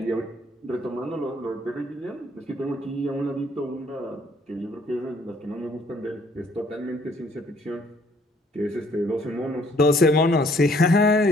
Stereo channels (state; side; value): normal; both; correlation 0.63